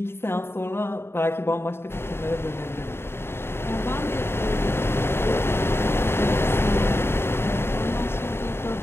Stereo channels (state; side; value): late; right; 0.11 ms